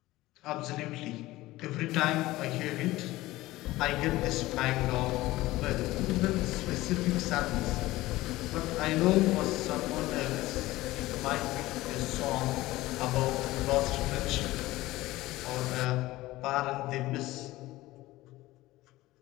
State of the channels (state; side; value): quieter; right; 17.9 dB